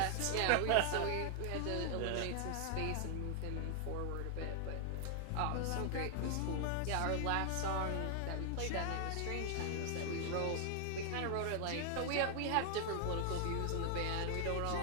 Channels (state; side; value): different; both; correlation 0.00